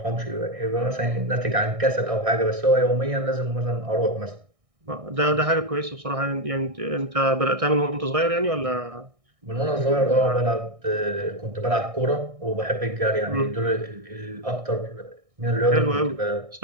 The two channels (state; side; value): late; left; 1.6 ms